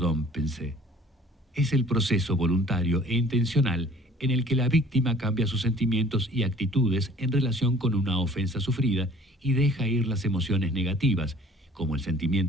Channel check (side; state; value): both; normal; correlation 0.51